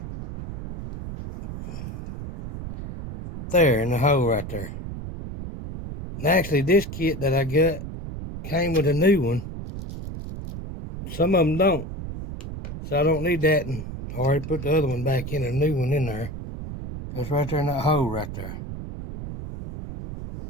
there in the hole right there. And actually, this kit that I got came with a new one. Some of them don't, so I don't need that. And I already put the other one back in, a new one in there. It's right there in that hole right there.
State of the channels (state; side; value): noise; right; rumble, 9 dB below the sound